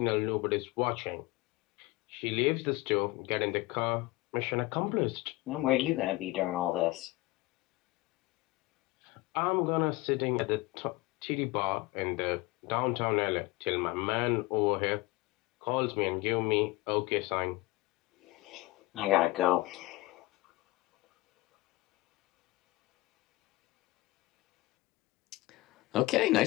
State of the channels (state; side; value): quieter; right; 20.2 dB